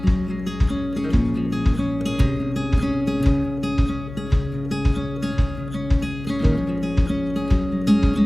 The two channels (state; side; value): noise; left; hum, 12 dB below the sound